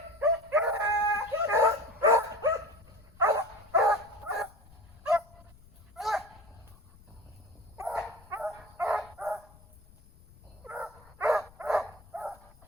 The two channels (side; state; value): left; noise; rumble, 25 dB below the sound